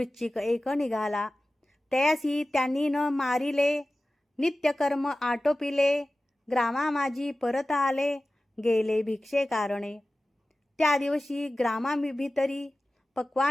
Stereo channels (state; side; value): normal; both; correlation 0.96